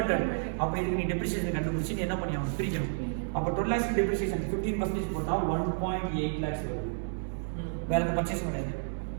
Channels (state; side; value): silent; left; digital silence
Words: அப்ப இதுக்கு நீ டெப்ரிசியேஷன் கண்டுபிடிச்சு நீ என்ன பண்ணியாகணும் பிரிக்கணும் அப்ப 12 lakhs டெப்ரிசியேஷன் 15% போட்டா 1.8 lakhs வருது வேற எந்த பர்ச்சேஸ் பண்ணாது